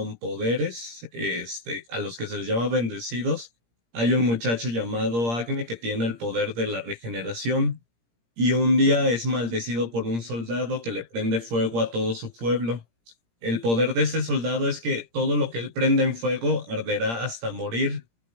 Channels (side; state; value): left; late; 17 ms